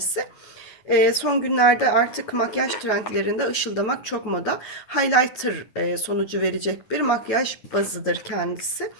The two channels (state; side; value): late; right; 9.3 ms